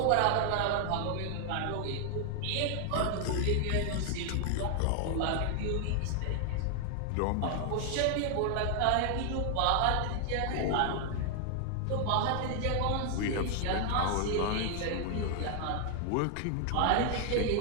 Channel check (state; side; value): different; both; correlation 0.00